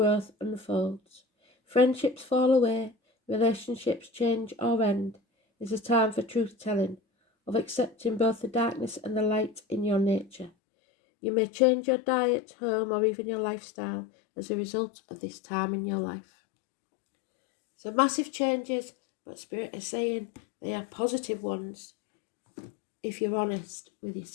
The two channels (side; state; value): right; drops out; at 10.5 s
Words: unfolds. Friendships fall away, relationships change or end. Is a time for truth-telling, of accepting both the darkness and the light in your nature. You may change your diet, home, or even your lifestyle as a result of this time in your life. So massive changes, but Spirit is saying they are positive ones if you're honest with